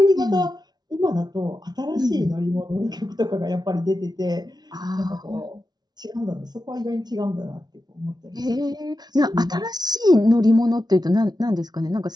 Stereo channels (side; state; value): left; late; 0.19 ms